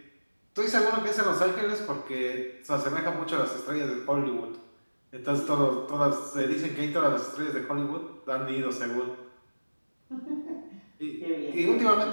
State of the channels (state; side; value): inverted; both; correlation -1.00